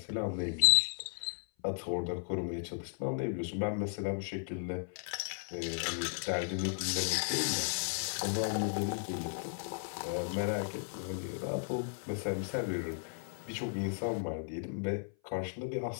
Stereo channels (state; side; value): silent; right; 54 dB below the other